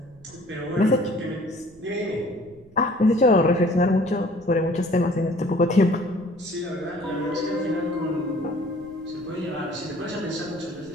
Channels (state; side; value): noise; right; rumble, 25 dB below the sound